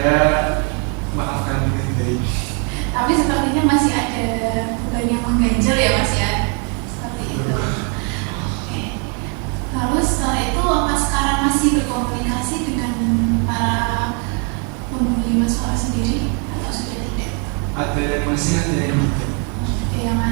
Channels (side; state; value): left; quieter; 37.4 dB